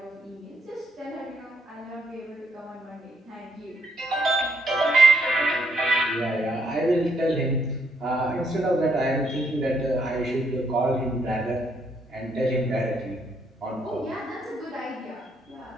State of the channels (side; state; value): both; normal; correlation 0.73